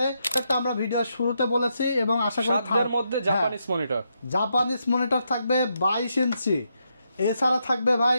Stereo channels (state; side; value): inverted; both; correlation -0.81